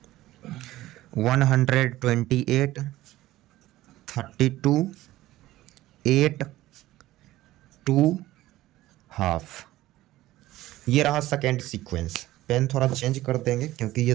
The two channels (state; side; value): quieter; left; 16.1 dB